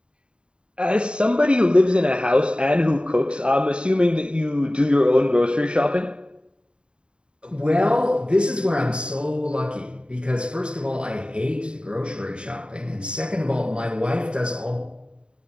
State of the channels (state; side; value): late; left; 0.053 ms